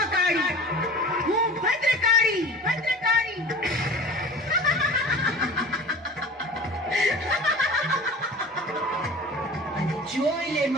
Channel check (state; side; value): normal; both; correlation 0.39